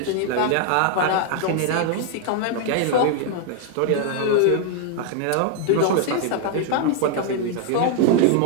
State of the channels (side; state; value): both; different; correlation 0.00